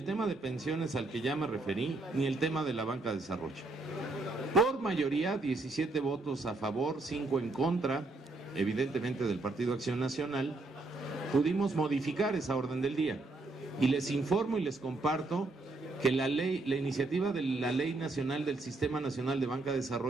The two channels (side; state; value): left; quieter; 3.2 dB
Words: tema de pensiones al que ya me referí, ni el tema de la banca de desarrollo. Por mayoría, 17 votos a favor, 5 en contra, evidentemente del Partido Acción Nacional, pudimos modificar esa orden del día. Y les informo y les comparto que la iniciativa de la Ley Nacional del Sistema Nacional de Banca de